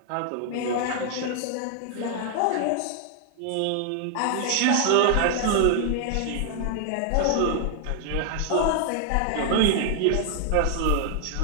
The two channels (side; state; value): both; different; correlation 0.00